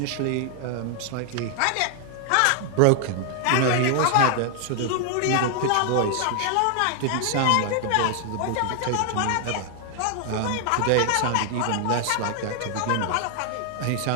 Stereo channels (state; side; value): different; both; correlation 0.00